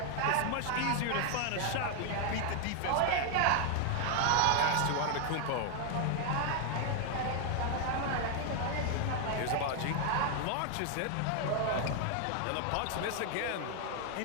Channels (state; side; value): different; both; correlation 0.00